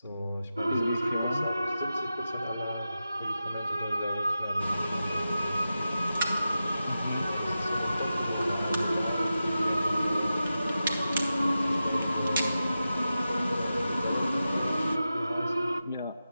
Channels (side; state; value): both; inverted; correlation -0.92